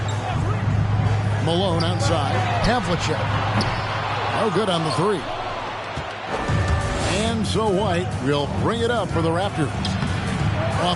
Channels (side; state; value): both; identical; correlation 1.00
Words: Malone outside. Havlicek. No good on the 3. And so White will bring it up for the Raptors.